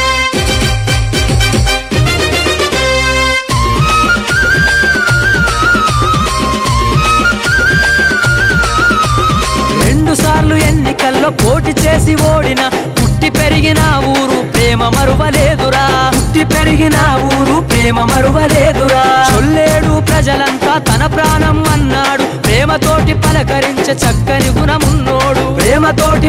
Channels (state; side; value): identical; both; correlation 1.00